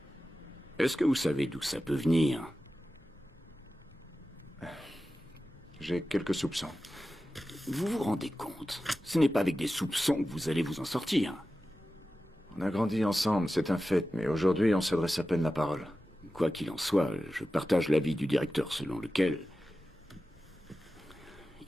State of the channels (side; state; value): both; normal; correlation 0.94